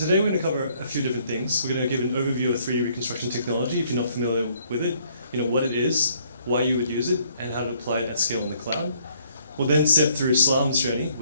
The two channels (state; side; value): inverted; both; correlation -0.66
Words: we're going to cover a few different things. We're going to give an overview of 3D reconstruction technology, if you're not familiar with it, what it is, why you would use it, and how to apply it at scale in the cloud. We'll then step through Slalom's journey